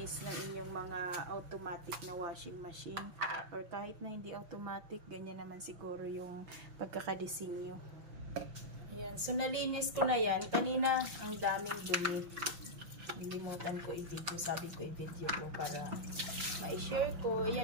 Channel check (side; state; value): left; late; 6.0 ms